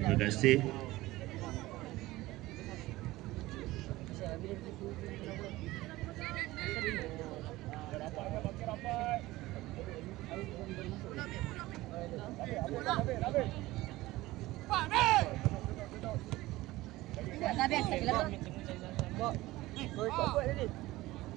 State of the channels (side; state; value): left; quieter; 18.3 dB